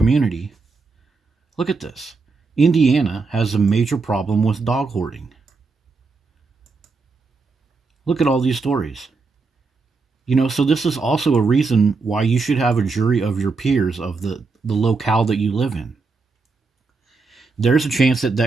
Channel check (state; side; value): quieter; left; 4.2 dB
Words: look at this. Indiana has a major problem with dog hoarding. Look at all these stories. You know, so this is also a reason why you should have a jury of your peers of the locale that you live in. There's a chance that